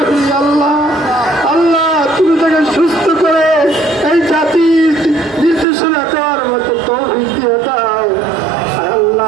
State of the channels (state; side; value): drops out; left; at 5.7 s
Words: আল্লাহ। আল্লাহ তুমি তাকে সুস্থ করে এই জাতির নির্দেশনা দেওয়ার মতো তৌফিক দিয়ে দাও